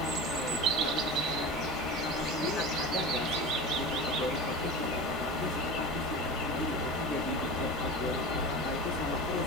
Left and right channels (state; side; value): normal; both; correlation 0.31